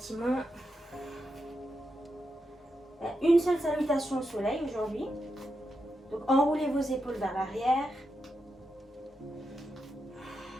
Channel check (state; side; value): normal; both; correlation 0.86